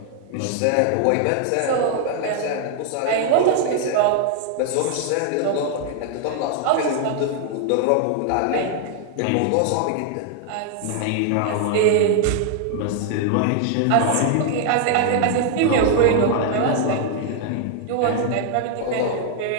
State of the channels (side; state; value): both; different; correlation 0.00